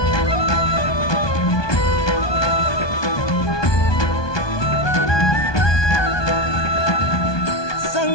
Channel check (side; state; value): right; late; 1.2 ms